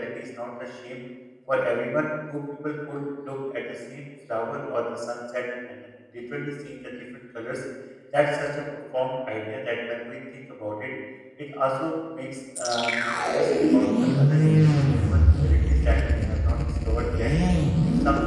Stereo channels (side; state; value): both; identical; correlation 1.00